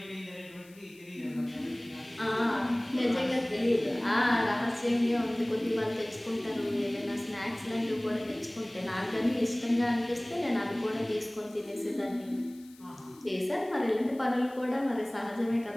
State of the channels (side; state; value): left; noise; hiss, 25 dB below the sound